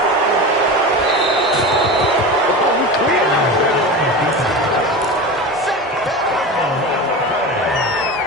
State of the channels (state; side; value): normal; both; correlation 0.27